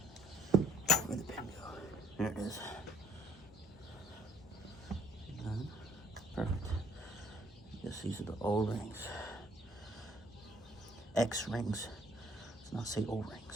Where'd the pin go? There it is. And then, perfect. I guess these are the O-rings. X-rings. Let's not say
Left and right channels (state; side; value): normal; both; correlation 0.61